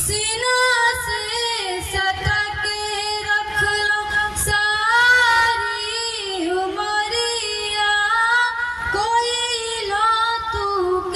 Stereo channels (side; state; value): both; identical; correlation 1.00